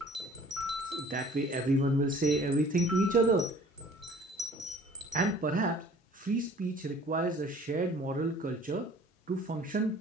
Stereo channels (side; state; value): both; normal; correlation 0.50